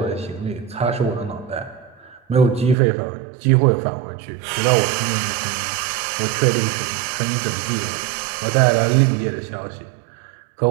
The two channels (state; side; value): drops out; left; at 2.8 s